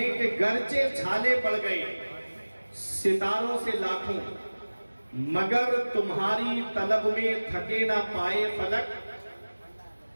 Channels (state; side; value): inverted; both; correlation -1.00